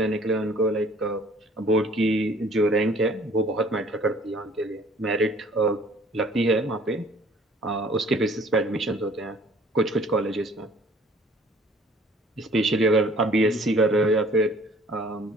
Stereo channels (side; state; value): both; normal; correlation 0.55